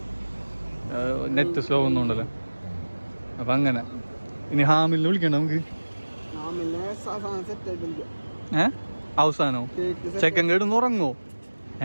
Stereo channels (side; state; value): both; inverted; correlation -1.00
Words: നെറ്റ് സ്ലോ ഒന്നും ഉണ്ടല്ലോ. അപ്പം അങ്ങനെ ഇനി ഹാമിലിനെ വിളിക്കണ്ട നമുക്ക്. അവസാനോ ചെക്കൻ കേടുന്ന് ഉറങ്ങോ?